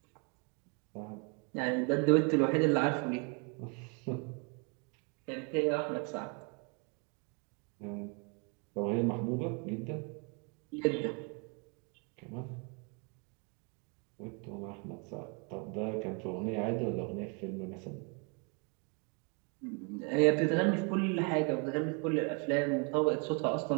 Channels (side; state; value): left; quieter; 34.7 dB